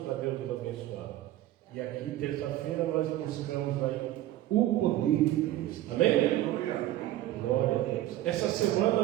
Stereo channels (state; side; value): quieter; left; 14.5 dB